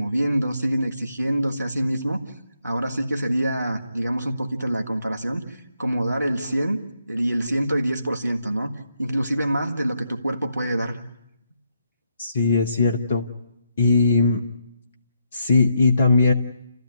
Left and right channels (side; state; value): both; inverted; correlation -0.79